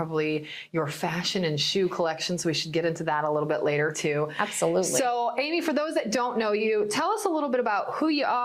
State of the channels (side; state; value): both; identical; correlation 1.00